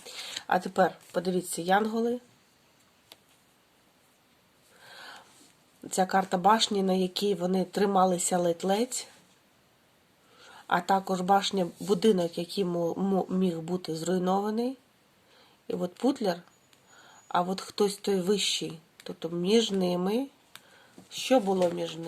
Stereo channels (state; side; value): identical; both; correlation 1.00